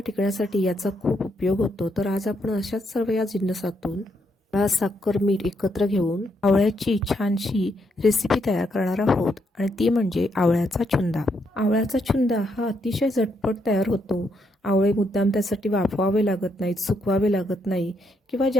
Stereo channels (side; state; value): both; normal; correlation 0.77